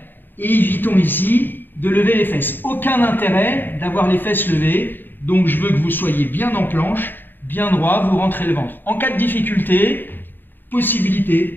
et évitons ici de lever les fesses. Aucun intérêt d'avoir les fesses levées, donc je veux que vous soyez bien en planche, bien droit, vous rentrez le ventre. En cas de difficulté,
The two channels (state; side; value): late; right; 0.093 ms